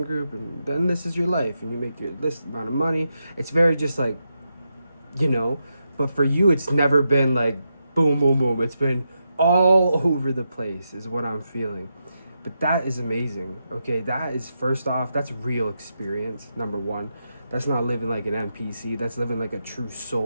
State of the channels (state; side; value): inverted; both; correlation -0.85